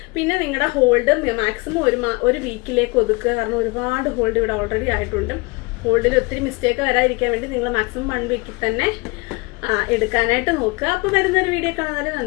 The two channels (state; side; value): quieter; right; 27.0 dB